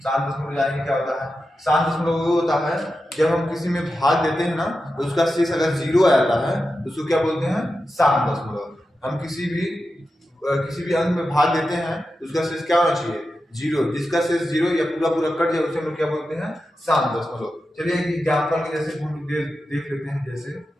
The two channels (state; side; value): normal; both; correlation 0.91